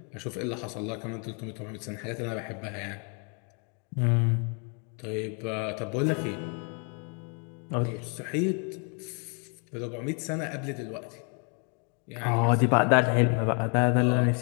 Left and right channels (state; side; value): quieter; right; 37.9 dB